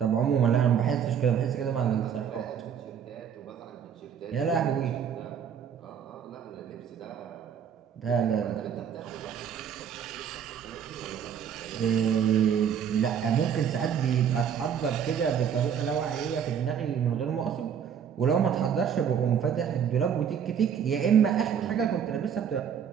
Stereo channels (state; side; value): quieter; left; 8.1 dB